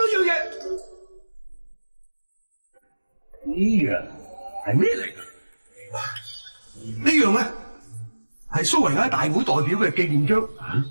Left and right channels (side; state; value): both; inverted; correlation -1.00